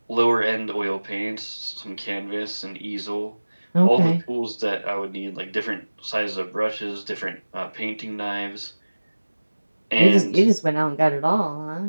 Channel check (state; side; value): inverted; both; correlation -1.00